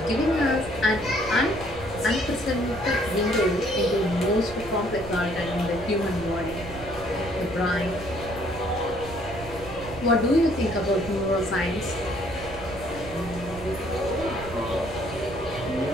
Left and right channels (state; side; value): noise; right; rumble, 14 dB below the sound